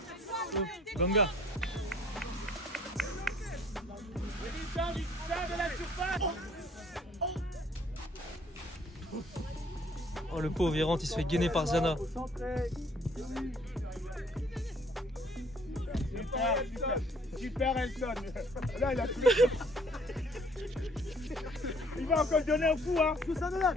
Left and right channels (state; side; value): normal; both; correlation 0.59